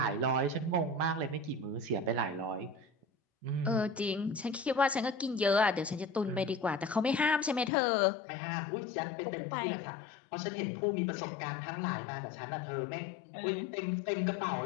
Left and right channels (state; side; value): drops out; right; at 7.7 s